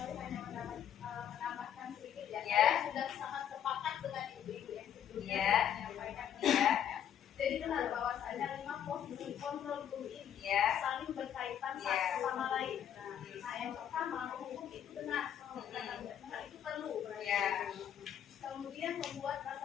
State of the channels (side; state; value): right; quieter; 9.5 dB